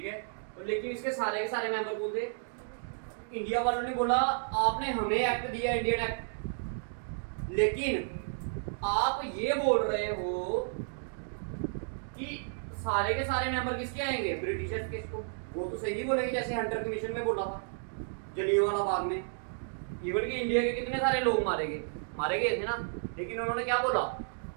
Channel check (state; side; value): silent; left; digital silence